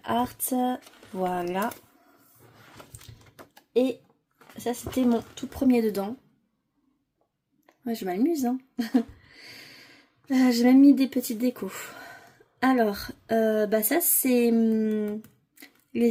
Art. Voilà. Et ça, c'était mon tout premier dedans. Ouais, je m'amuse, hein. J'ai même mis des petites décos. Alors, bah ça, c'est les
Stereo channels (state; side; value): identical; both; correlation 1.00